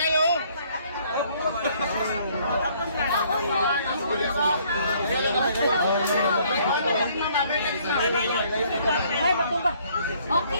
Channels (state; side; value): inverted; both; correlation -0.63